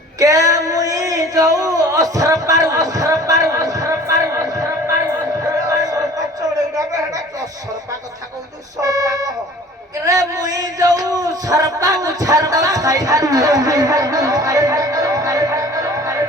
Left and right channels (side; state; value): both; normal; correlation 0.47